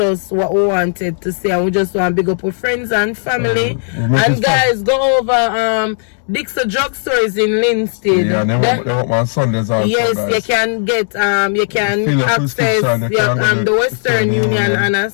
what we wanted to say. And we just want to big up our friends and family. And guys, go over Dixon Drugstores in Linstead. Yeah, they want my Sundays also. Yes, guys. you can get you can access the Western Union on a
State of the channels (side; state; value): right; silent; digital silence